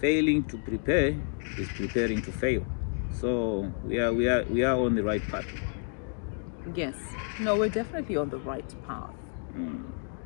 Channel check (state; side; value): silent; right; 58 dB below the other